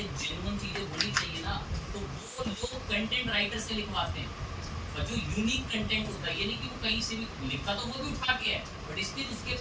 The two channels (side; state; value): both; identical; correlation 1.00